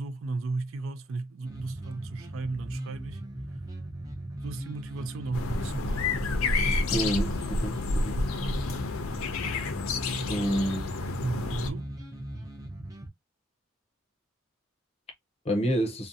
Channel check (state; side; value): normal; both; correlation 0.69